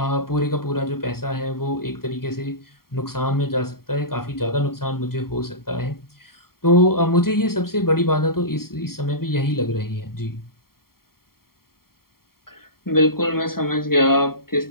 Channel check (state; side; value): late; right; 0.93 ms